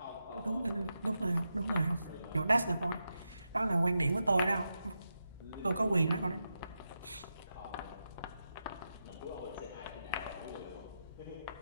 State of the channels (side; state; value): both; inverted; correlation -0.88